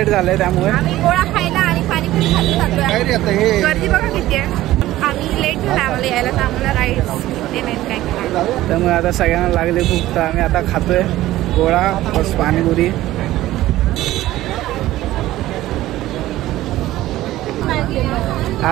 झाले, त्यामुळे आम्ही गोळा खायला आणि पाणीपुरी खायला जातोय. गर्दी बघा किती आहे. आम्ही लेट झाला आम्हाला यायला, तर आम्हाला राईड्स ते नाही काय खायला. त्यामुळे आता सगळ्यांना लागले भूक, तर आम्ही आता खातोय गोळा प्लस पाणीपुरी.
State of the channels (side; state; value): left; quieter; 15.5 dB